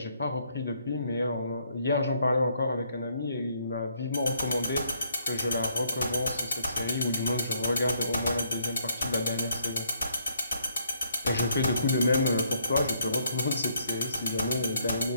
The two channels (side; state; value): both; inverted; correlation -0.70